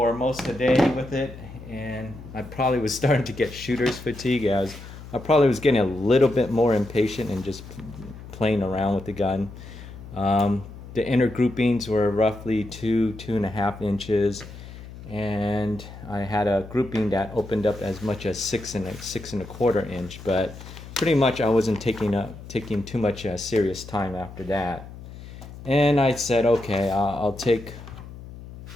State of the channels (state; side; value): noise; left; hum, 14 dB below the sound